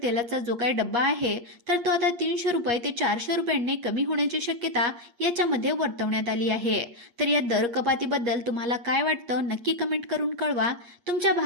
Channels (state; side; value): late; left; 8.4 ms